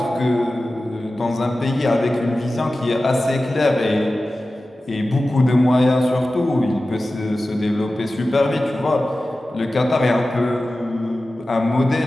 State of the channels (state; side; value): normal; both; correlation 0.95